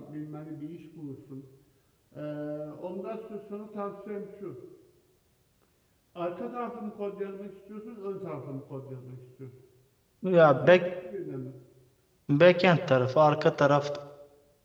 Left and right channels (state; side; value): identical; both; correlation 1.00